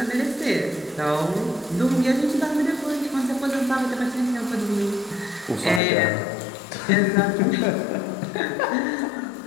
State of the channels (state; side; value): drops out; right; at 5.8 s